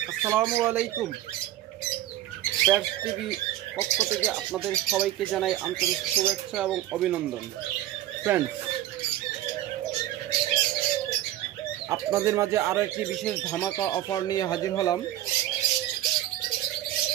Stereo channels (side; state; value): left; quieter; 13.6 dB